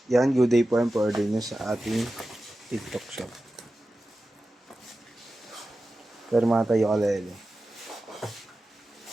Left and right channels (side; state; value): both; normal; correlation 0.94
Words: Yan, good day po ang pa-order nyo sa ating TikTok shop. Pero mga tayo kalele.